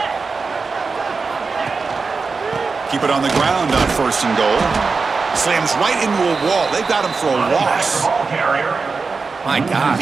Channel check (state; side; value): quieter; left; 4.5 dB